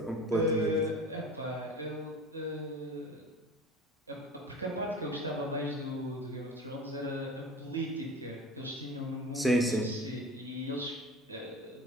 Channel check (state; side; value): normal; both; correlation 0.37